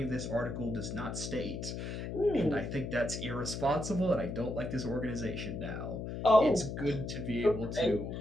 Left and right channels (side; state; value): left; noise; hum, 5 dB below the sound